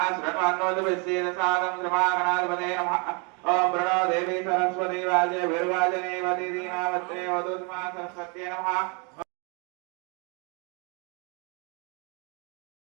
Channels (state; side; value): quieter; left; 33.7 dB